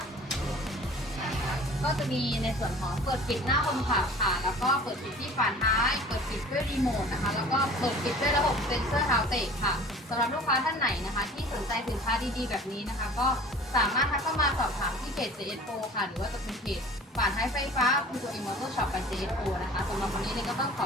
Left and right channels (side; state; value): both; normal; correlation 0.45